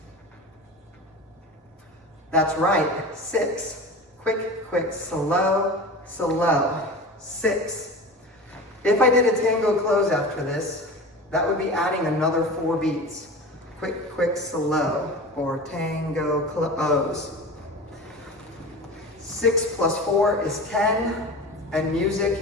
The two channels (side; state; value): both; normal; correlation 0.32